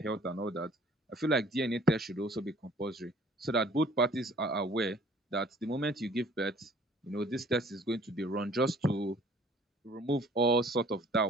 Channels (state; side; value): normal; both; correlation 0.55